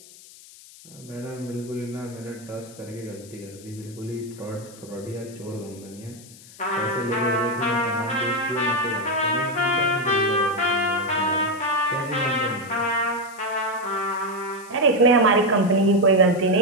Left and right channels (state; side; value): noise; left; hiss, 21 dB below the sound